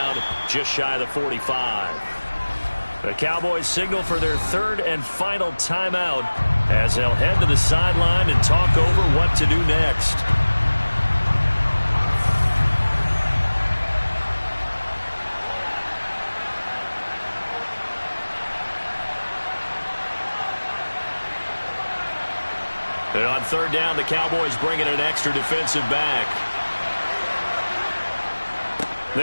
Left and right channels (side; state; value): both; inverted; correlation -1.00